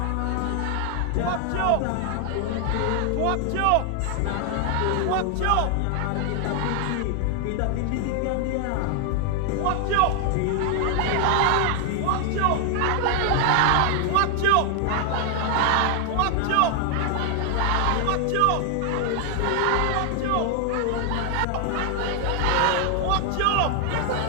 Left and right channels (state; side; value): different; both; correlation 0.00